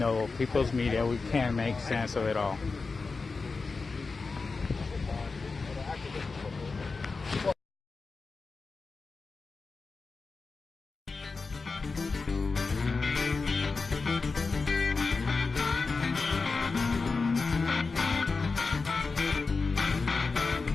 people's media, we can't make sense of it all.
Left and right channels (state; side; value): quieter; right; 4.2 dB